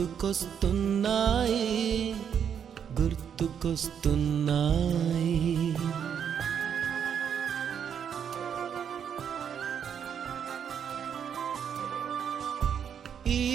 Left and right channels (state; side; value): quieter; left; 8.1 dB